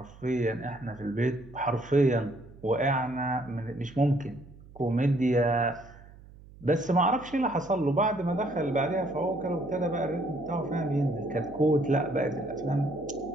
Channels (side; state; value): right; noise; hum, 21 dB below the sound